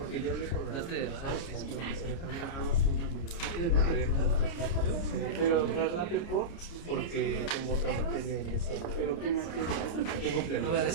ya hablé con la... No te desahogues. Pero traslate por. Porque tengo otra materia en esa... Pero qué materia. Tengo pleno. No voy a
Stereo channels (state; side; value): late; right; 29 ms